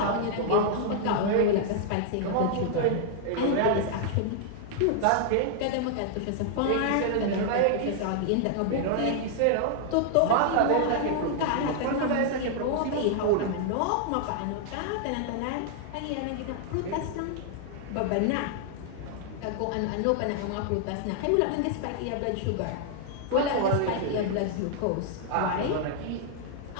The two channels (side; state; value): both; different; correlation 0.00